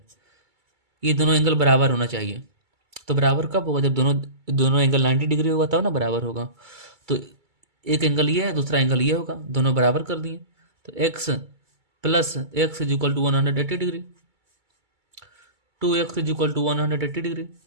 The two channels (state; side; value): late; left; 2.3 ms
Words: ये दोनों एंगल बराबर होना चाहिए। तो बराबर कब होगा, जब दोनों दोनों एंगल 90 डिग्री होगा तब ना बराबर होगा। तो एक एंगल ये है दूसरा एंगल ये होगा, दोनों बराबर कर दिए, तो x plus x is equal to 180 degree, 2x is equal to 180 degree,